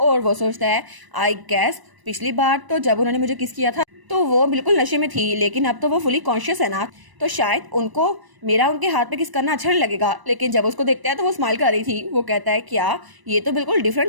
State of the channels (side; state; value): left; late; 1.0 ms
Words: और वो सोचता है आई गैस पिछली बार तो जब उन्होंने मुझे किस किया था तो वो बिल्कुल नशे में थी, लेकिन अब तो वो फुली कॉन्शियस है ना, तो शायद उनको मेरा उनके हाथ पे किस करना अच्छा नहीं लगेगा। लेकिन जब उसको देखता है तो वो स्माइल कर रही थी। वो कहता है क्या ये तो बिल्कुल